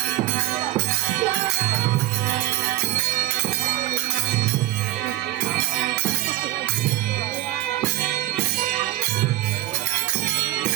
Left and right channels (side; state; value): left; quieter; 16.5 dB